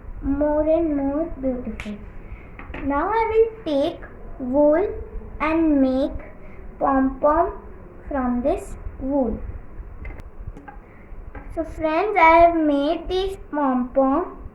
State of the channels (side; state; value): both; identical; correlation 1.00